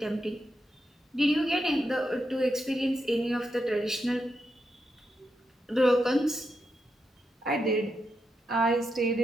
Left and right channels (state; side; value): normal; both; correlation 0.85